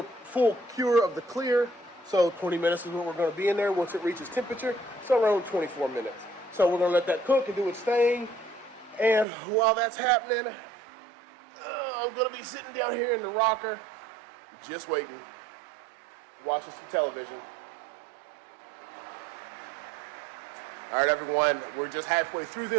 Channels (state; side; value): drops out; left; at 9.2 s